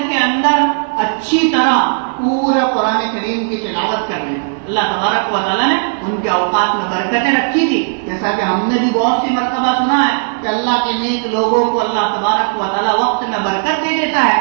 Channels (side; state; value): left; silent; 56 dB below the other